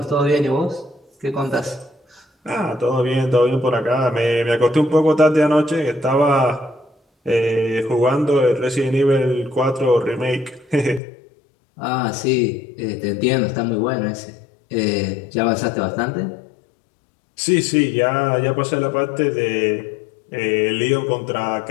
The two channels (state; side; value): drops out; right; at 11.0 s